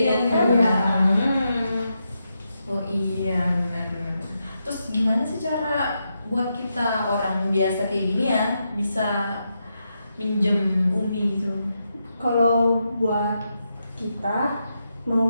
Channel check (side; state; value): both; inverted; correlation -0.84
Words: kan. iya. Oh iya, benar-benar. Terus gimana sih cara buat kita orang biasa kayak gini ya bisa minjem UMI gitu? Kalau buat kita mau